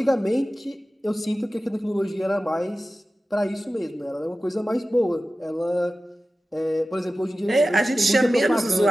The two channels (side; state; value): both; normal; correlation 0.95